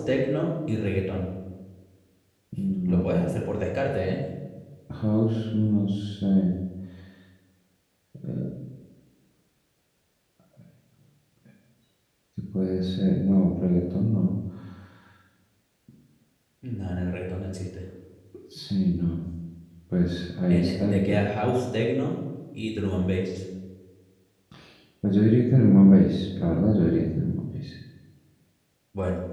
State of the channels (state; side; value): identical; both; correlation 1.00